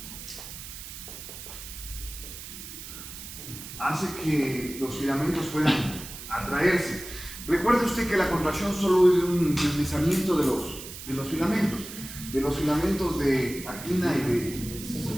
los filamentos puedan atraerse. Recuerde usted que la contracción solo es un deslizamiento de los filamentos de actina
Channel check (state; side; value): noise; right; hiss, 12 dB below the sound